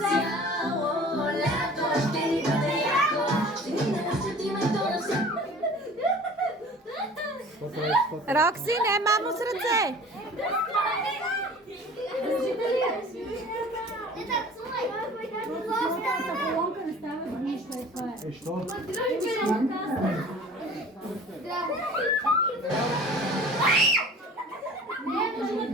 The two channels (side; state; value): both; normal; correlation 0.44